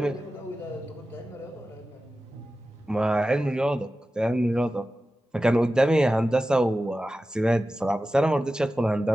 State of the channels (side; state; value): both; normal; correlation 0.94